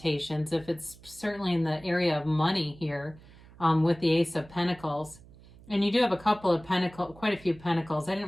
if it's certainly in the area of money here. With the Ace of Pentacles. And you do have a couple of pentacles, quite a few pentacles. I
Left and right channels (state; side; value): noise; right; hum, 22 dB below the sound